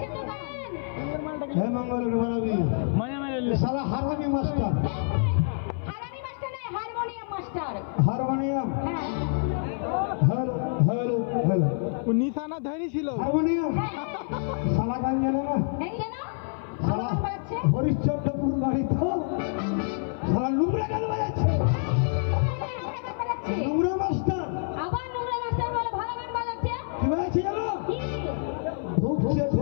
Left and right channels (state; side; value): silent; right; 57 dB below the other